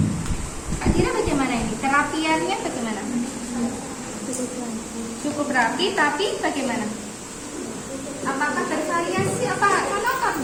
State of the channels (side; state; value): both; identical; correlation 1.00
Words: Kak Dira bagaimana ini? Terapiannya bagaimana? Cukup rapi, tapi bagaimana? Apakah bervariasi? Apa